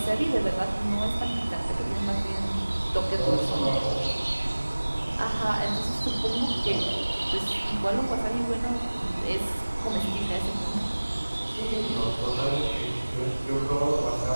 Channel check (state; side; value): inverted; both; correlation -1.00